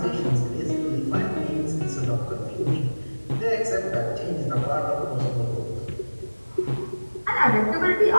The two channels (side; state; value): both; inverted; correlation -1.00